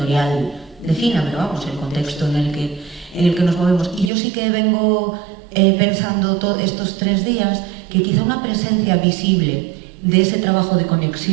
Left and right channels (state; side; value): drops out; left; at 4.1 s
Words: defina, pero vamos, el contexto en el que nos movemos. Y yo sí que vengo pensando estos 3 días que quizá una presencia visible de ese trabajo de